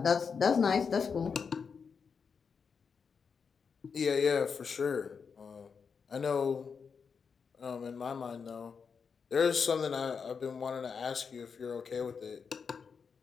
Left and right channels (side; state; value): right; quieter; 5.9 dB